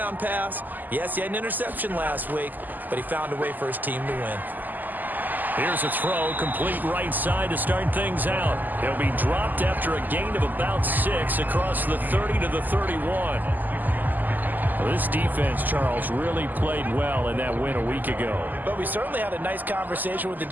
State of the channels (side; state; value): left; late; 0.085 ms